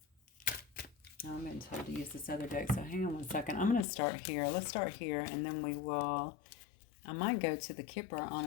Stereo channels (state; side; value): drops out; right; at 3.9 s